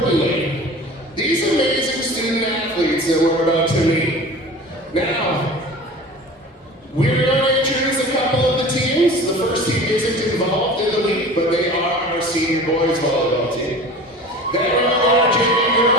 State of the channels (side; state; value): both; normal; correlation 0.38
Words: these amazing student athletes that we're about to meet. Now, we're going to introduce a couple of the teams. The first team isn't involved in the league, but they are our senior boys volleyball team. Then we are our junior